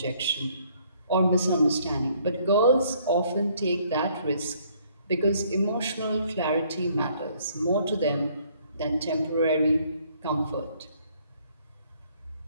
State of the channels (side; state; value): both; inverted; correlation -0.64